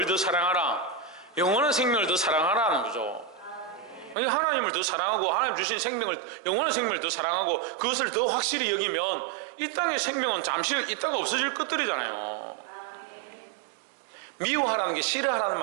더 사랑하라? 영원한 생명을 더 사랑하라는 거죠. 하나님을 더 사랑하고 하나님 주신 생명을, 영원한 생명을 더 사랑하고 그것을 더 확실히 여기면 이 땅의 생명은 잠시 있다가 없어질 것들이잖아요. 미워하라는 게 싫어하라는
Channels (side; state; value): left; drops out; at 4.2 s